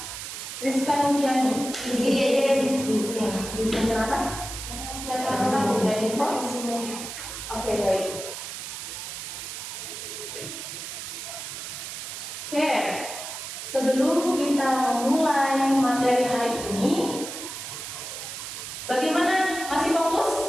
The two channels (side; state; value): right; noise; hiss, 8 dB below the sound